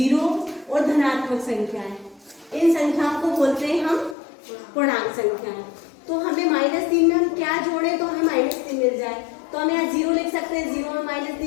और धनात्मक संख्याएं, इन संख्याओं को बोलते हैं हम पूर्णांक संख्याएं। तो हमें -3 में हम क्या जोड़े तो हमें -3 मिल जाए। तो हम यहाँ 0 लिख सकते हैं, 0 में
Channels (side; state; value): right; drops out; at 4.2 s